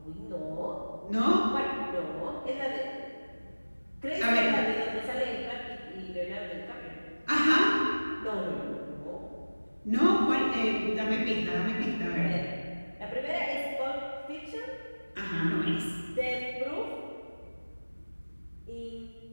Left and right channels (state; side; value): inverted; both; correlation -1.00